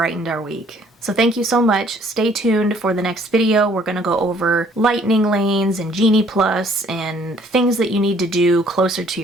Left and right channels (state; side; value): normal; both; correlation 0.60